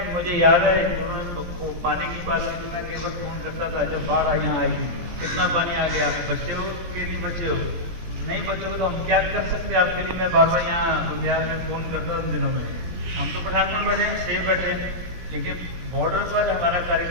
मुझे याद है उन्होंने पानी की बात की, मैं कई बार फोन करता था जब बाढ़ यहाँ आई, कितना पानी आ गया, आप बचे हो कि नहीं बचे हो, नहीं बचे हो तो हम क्या कर सकते हैं आपके लिए। मैं बार बार यहाँ बुंदियाल में फोन करता उन दिनों में। हम तो पठानकोट बैठे हैं, सेफ बैठे हैं, लेकिन बॉर्डर पर हमारा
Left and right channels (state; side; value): late; left; 17 ms